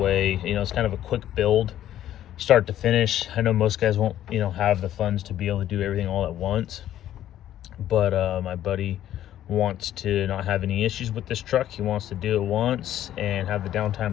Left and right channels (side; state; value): right; quieter; 12.0 dB